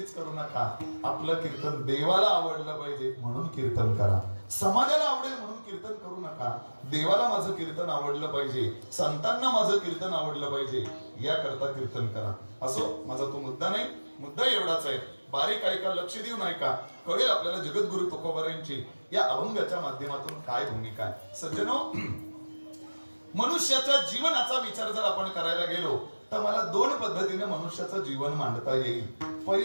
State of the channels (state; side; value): inverted; both; correlation -1.00